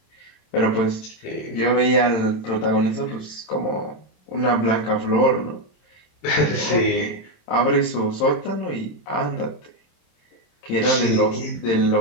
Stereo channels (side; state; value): right; late; 27 ms